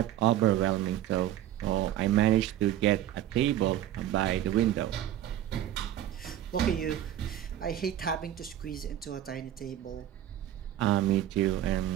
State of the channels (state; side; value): quieter; left; 11.9 dB